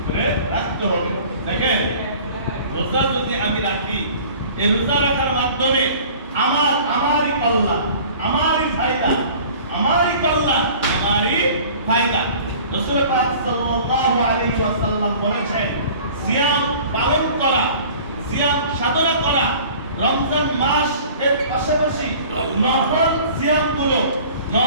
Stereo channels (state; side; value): inverted; both; correlation -0.46